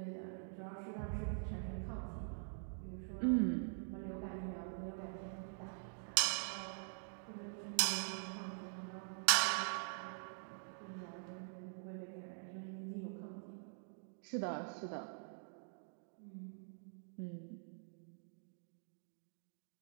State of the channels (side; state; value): left; silent; digital silence